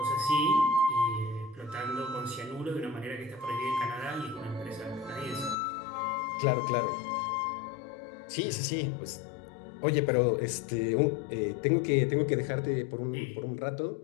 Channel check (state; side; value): drops out; right; at 5.6 s